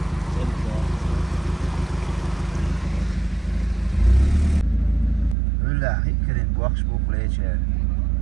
ولا هيكرين بوخش بوك ليش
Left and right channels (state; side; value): drops out; left; at 5.4 s